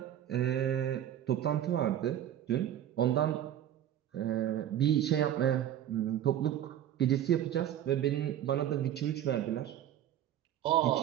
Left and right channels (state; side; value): quieter; left; 11.1 dB